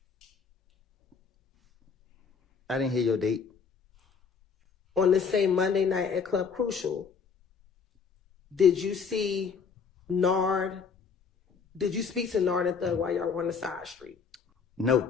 I didn't hear your date. on this same Monday night at Club Crucial, did you see Nard? Did you speak to Nard and Thug while y'all were on the side street? No.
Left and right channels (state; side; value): quieter; right; 5.8 dB